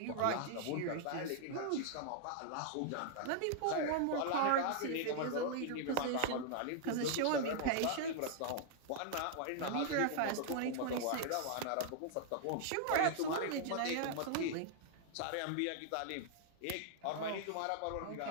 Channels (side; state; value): both; different; correlation -0.01